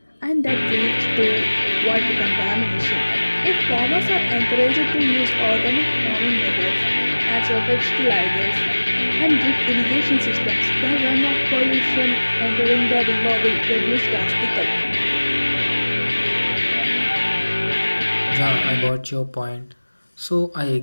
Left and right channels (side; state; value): both; inverted; correlation -1.00